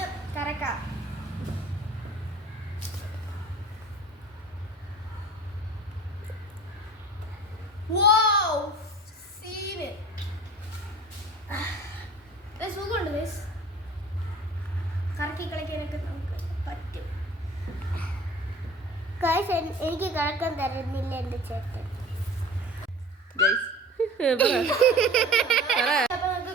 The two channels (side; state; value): both; normal; correlation 0.42